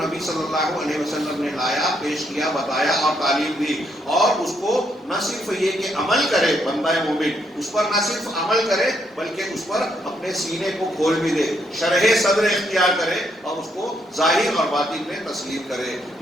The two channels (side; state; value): both; normal; correlation 0.75